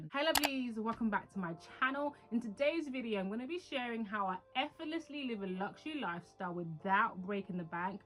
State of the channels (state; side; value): identical; both; correlation 1.00